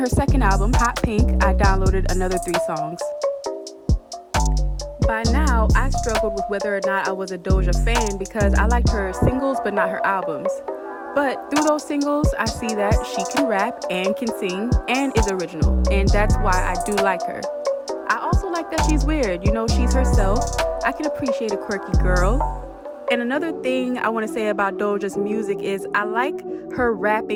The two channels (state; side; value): identical; both; correlation 1.00